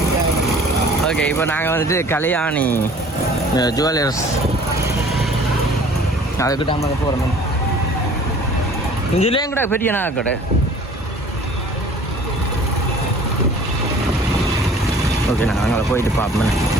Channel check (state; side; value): normal; both; correlation 0.50